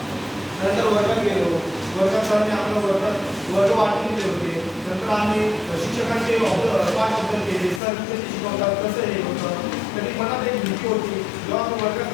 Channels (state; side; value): drops out; right; at 7.8 s